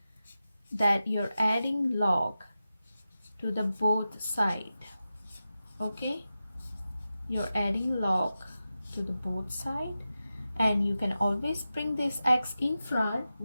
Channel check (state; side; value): inverted; both; correlation -0.92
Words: that you're adding log to the both side. Okay? You're adding log to the both side, and you can always bring this x in front.